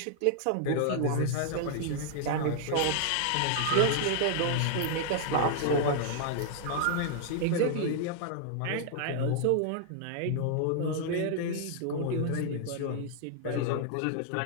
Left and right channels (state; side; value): different; both; correlation 0.00